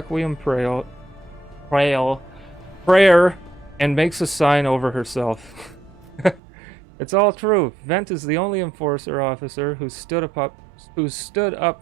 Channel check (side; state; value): left; drops out; at 6.4 s